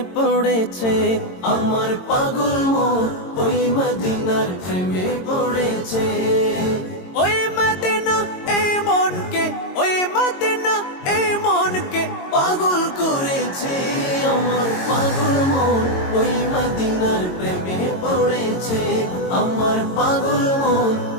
পড়েছে। আমার পাগল মন ওই মদিনার প্রেমে পড়েছে। ওই মদিনা এই মনকে, ওই মদিনা এই মনকে পাগল করেছে। আমার পাগল মন ওই মদিনার প্রেমে পড়েছে। আমার পাগল মন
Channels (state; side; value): late; right; 22 ms